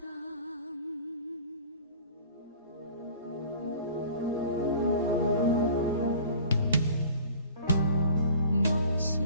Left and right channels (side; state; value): both; inverted; correlation -0.45